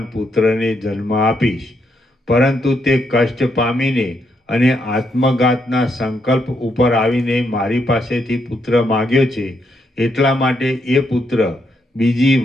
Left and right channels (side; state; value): both; normal; correlation 0.77